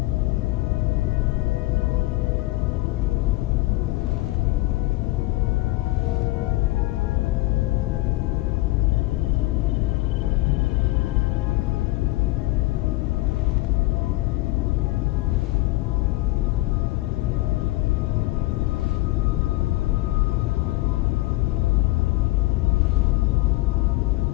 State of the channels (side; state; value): right; quieter; 19.7 dB